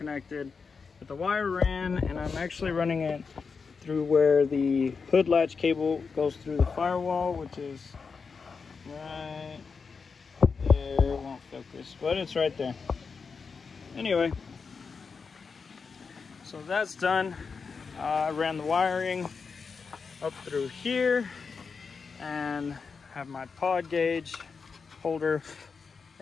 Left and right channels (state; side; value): quieter; right; 5.2 dB